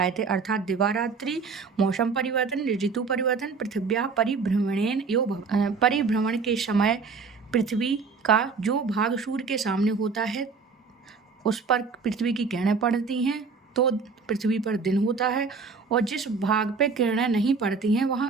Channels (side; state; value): left; quieter; 4.9 dB